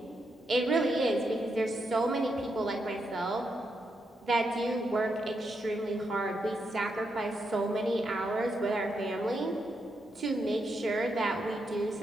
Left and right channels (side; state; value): both; normal; correlation 0.82